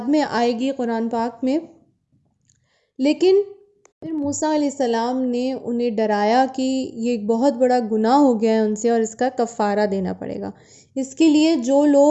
میں آئے گی قرآن پاک میں، لیکن پھر موسیٰ علیہ السلام نے انہیں ڈرایا کہ یہ ایک بہت بڑا گناہ ہو گیا ہے ان سے اور اس کا کفارہ دینا پڑے گا۔ اس کے لیے جو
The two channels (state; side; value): identical; both; correlation 1.00